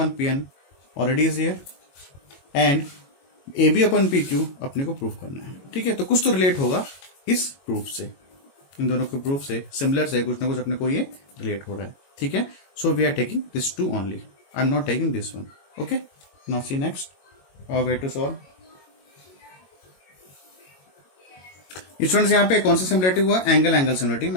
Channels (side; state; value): right; late; 22 ms